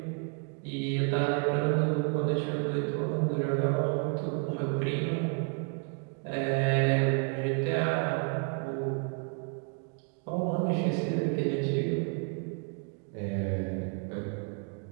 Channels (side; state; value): left; quieter; 39.8 dB